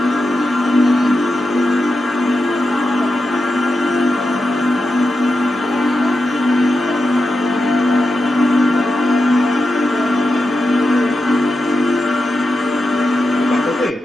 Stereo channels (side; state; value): both; normal; correlation 0.89